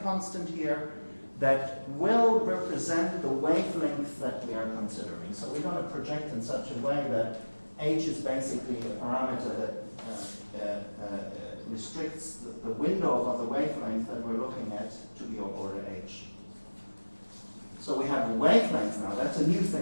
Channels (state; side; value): inverted; both; correlation -1.00